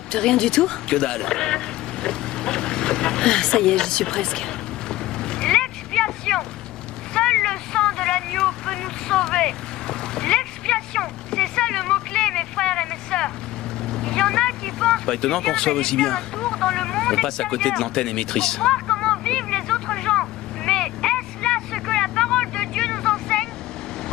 rien du tout? Que dalle. Ah, ça y est, j'y suis presque. L'expiation. Seul le sang de l'agneau peut nous sauver. L'expiation, c'est ça le mot-clé, mes frères et mes sœurs. Il y en a qui pensent... Pas étonnant qu'on reçoive aussi bien. On passe à côté de l'antenne l'antenne émettrice. pour voir comment vivent les autres gens. Mais est-ce là ce que la parole de Dieu nous enseigne?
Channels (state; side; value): quieter; right; 16.3 dB